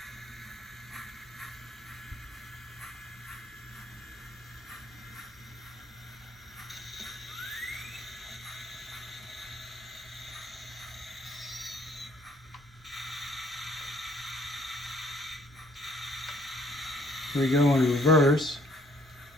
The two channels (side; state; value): both; normal; correlation 0.63